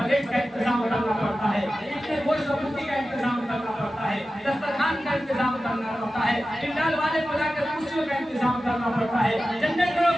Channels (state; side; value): normal; both; correlation 0.94